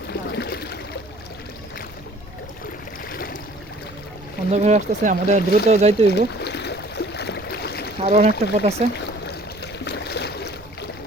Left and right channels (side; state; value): right; noise; rumble, 22 dB below the sound